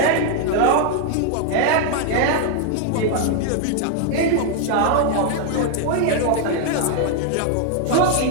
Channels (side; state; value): both; different; correlation 0.00